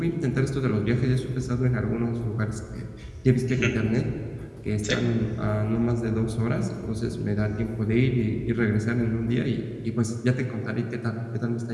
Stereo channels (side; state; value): both; identical; correlation 1.00